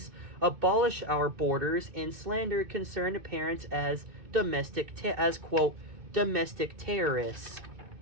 abolish our borders, and slander concerned parents as domestic terrorists.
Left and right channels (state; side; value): late; left; 2.9 ms